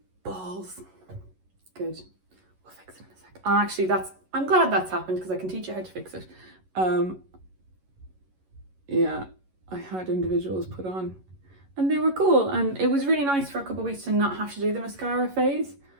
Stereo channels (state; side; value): late; left; 11 ms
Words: balls. Good. We'll fix it in a sec. Actually, I'm glad that's happened because I can teach you how to fix it. Yeah, I had individuals put on and they were cool. And it was really nice for a couple of weeks to not have to do the mascara phase